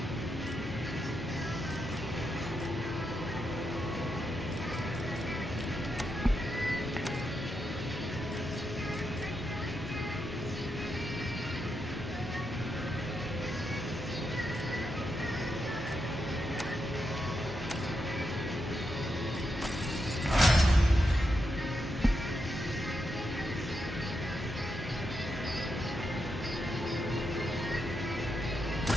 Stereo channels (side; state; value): both; normal; correlation 0.84